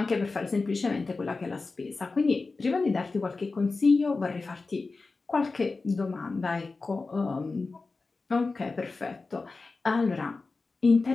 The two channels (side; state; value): right; quieter; 3.9 dB